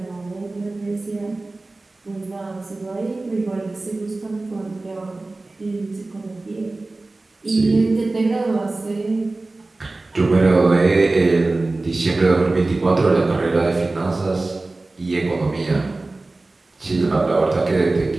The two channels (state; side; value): quieter; left; 3.2 dB